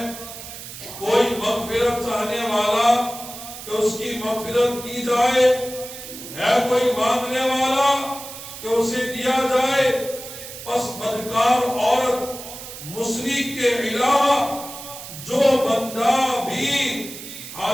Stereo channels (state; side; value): noise; right; hiss, 12 dB below the sound